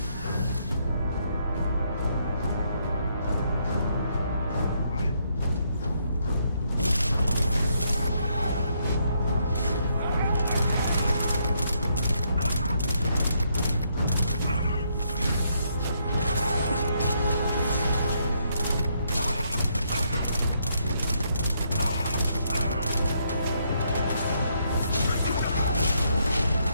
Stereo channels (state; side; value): inverted; both; correlation -0.74